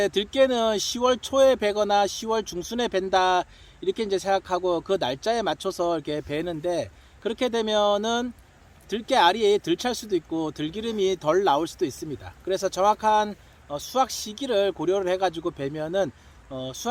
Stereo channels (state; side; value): identical; both; correlation 1.00